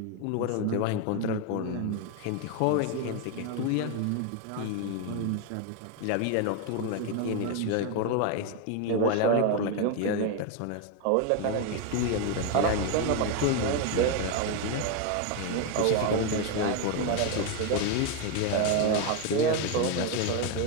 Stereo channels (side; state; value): both; different; correlation 0.01